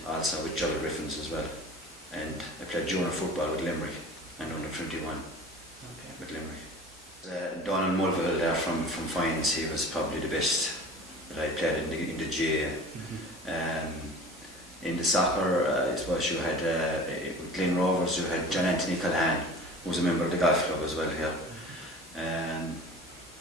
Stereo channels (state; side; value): normal; both; correlation 0.40